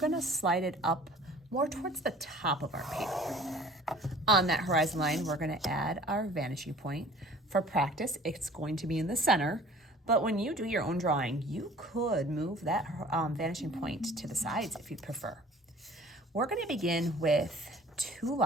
to slide it up more towards the top of our paper. On that horizon line, we're going to add our vanishing point. For practice, it's going to be in the center, but when you do your own drawing, you could move that vanishing point to the sides if you'd prefer. We're going to begin with two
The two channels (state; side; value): normal; both; correlation 0.49